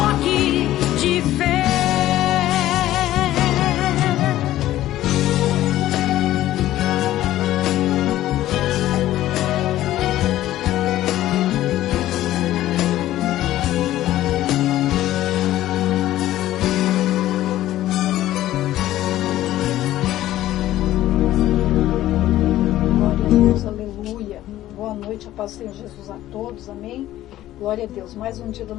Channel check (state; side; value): quieter; right; 14.2 dB